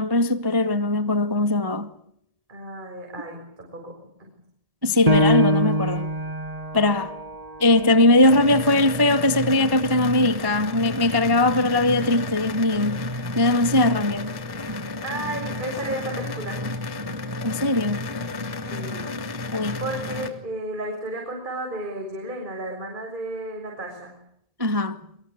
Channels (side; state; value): left; late; 1.7 ms